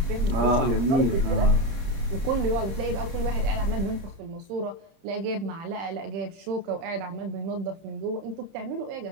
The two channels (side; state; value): left; late; 30 ms